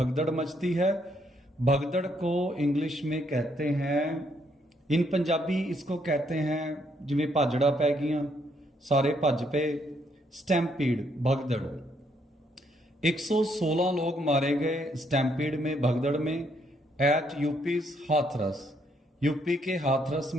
मचती है, भगदड़ को इंग्लिश में कहते हैं, इन पंजाबी इसको कहते हैं जिमें भाजड़ा पै गईयां, सारे भज पे, स्टैम्पीड, भगदड़। 116 लोग मारे गए स्टैम्पीड में, भगदड़ में, एट यूपीज हाथरस, यूपी के हाथरस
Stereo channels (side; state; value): both; normal; correlation 0.72